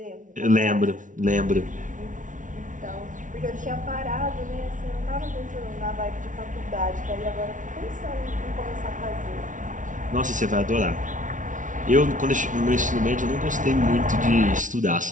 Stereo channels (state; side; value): late; left; 0.37 ms